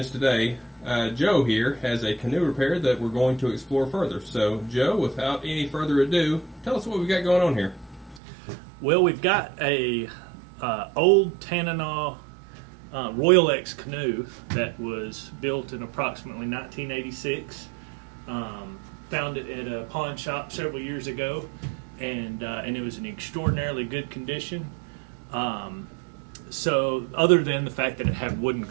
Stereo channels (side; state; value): left; drops out; at 8.2 s